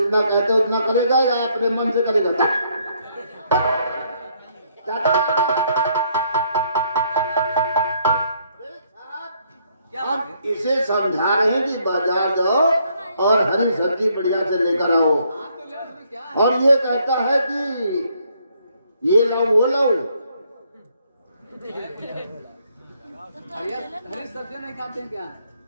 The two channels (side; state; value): both; inverted; correlation -0.69